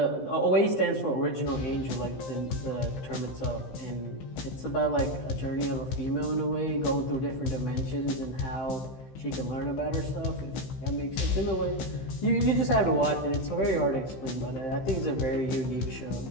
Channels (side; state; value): right; late; 15 ms